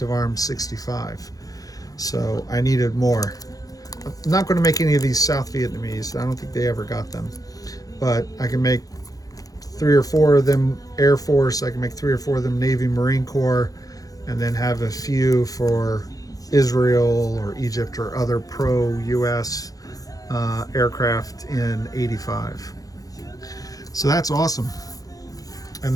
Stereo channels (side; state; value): right; late; 0.17 ms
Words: of Arms 65. So I needed more. I'm not going to make any of these South Vietnamese. I don't think they ever got them. But I can make 3 or 4 of them Air Force. I can make 3 or 4 of them Navy Marine Corps, and then have a few for Israel or Egypt or other pro-US aircraft in 85. So that's awesome. And